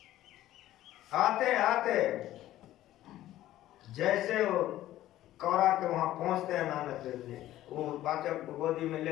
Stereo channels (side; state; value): right; quieter; 14.2 dB